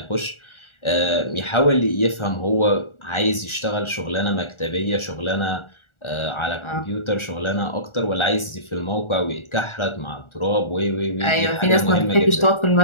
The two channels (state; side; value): late; right; 1.4 ms